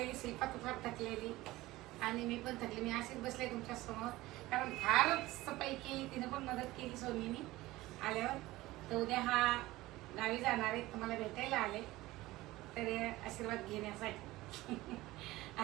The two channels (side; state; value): left; quieter; 18.3 dB